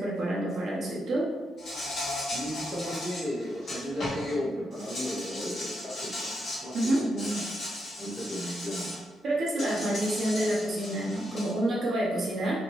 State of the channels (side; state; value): both; normal; correlation 0.82